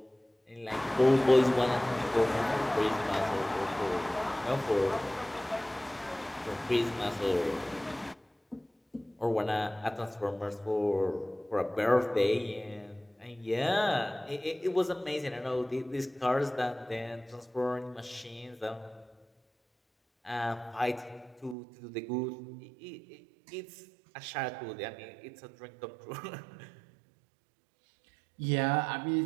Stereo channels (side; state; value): left; drops out; at 21.6 s